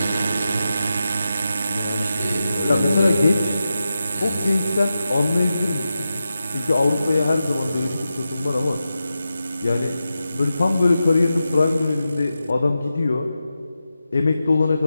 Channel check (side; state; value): both; inverted; correlation -0.91